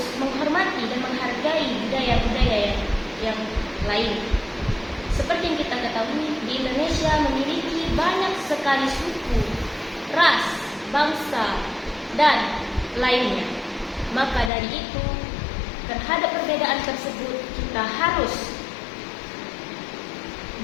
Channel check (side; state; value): right; drops out; at 14.5 s